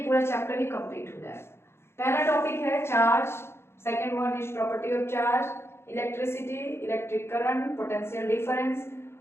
पूरा चैप्टर ही कंप्लीट हो जाएगा। पहला टॉपिक है charge, second one is property of charge, electricity, electric current, potential difference,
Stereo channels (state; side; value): late; right; 0.12 ms